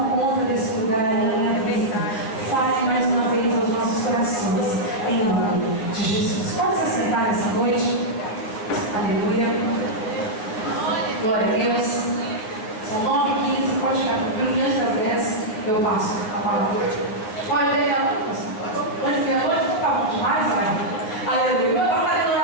conta desse lugar em minha vida. Fale mais uma vez aos nossos corações, em nome de Jesus. Pode se sentar nessa noite. Aleluia. Glória a Deus. São 9h15, pode ficar diante das 10, eu passo a palavra. Pode ver a noite? Pode ver a noite? Tá bom demais, vai. Aleluia. Eu estava fazendo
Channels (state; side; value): late; right; 9.4 ms